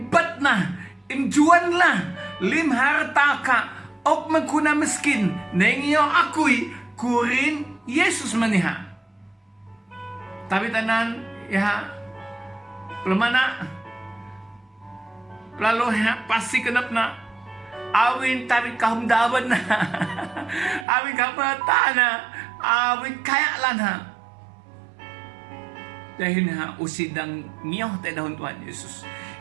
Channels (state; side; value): drops out; left; at 20.9 s